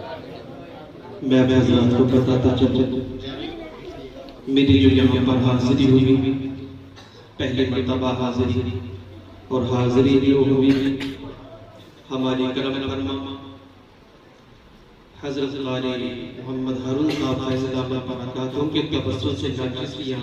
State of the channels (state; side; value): identical; both; correlation 1.00